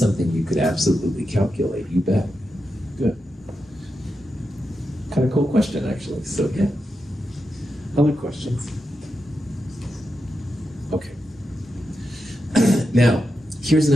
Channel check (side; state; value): both; normal; correlation 0.88